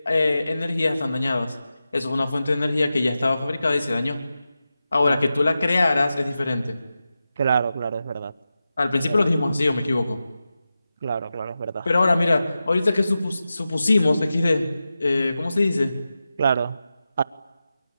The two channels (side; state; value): both; inverted; correlation -0.92